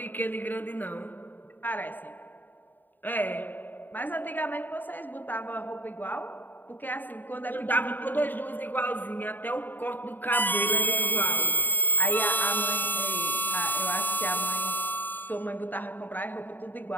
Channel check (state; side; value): late; right; 0.090 ms